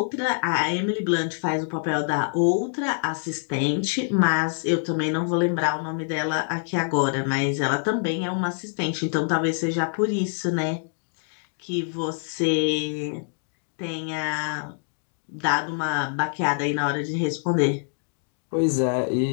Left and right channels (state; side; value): silent; right; 61 dB below the other